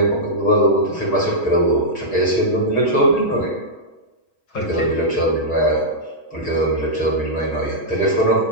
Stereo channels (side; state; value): right; late; 6.3 ms